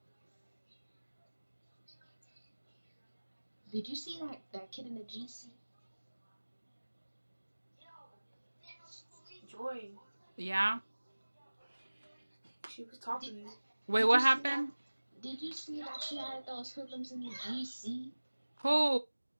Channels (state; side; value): inverted; both; correlation -1.00